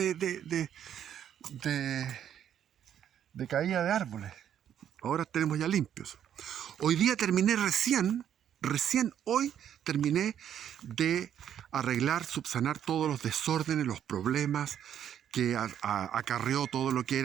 caída de árboles. Ahora tenemos ya limpios. Hoy día terminé recién hoy terminé de arreglar, subsanar todos los desórdenes, los problemas que acarreó todo lo que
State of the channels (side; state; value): left; quieter; 9.7 dB